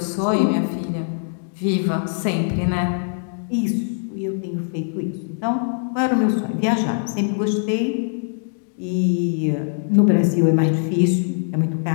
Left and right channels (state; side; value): silent; right; digital silence